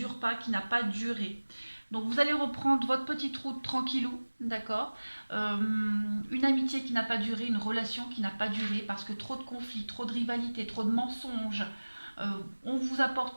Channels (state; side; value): inverted; both; correlation -1.00